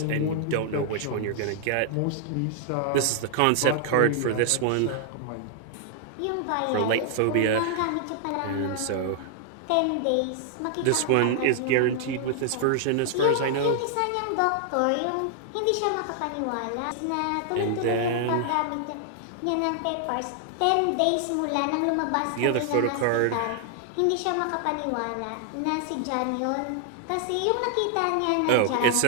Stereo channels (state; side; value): different; both; correlation 0.00